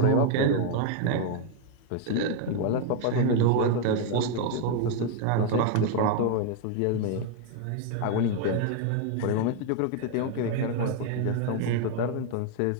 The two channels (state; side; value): different; both; correlation 0.00